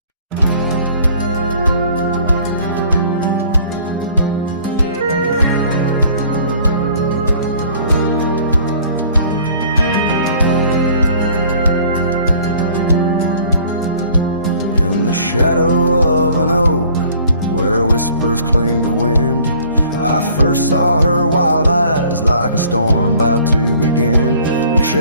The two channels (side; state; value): both; inverted; correlation -0.54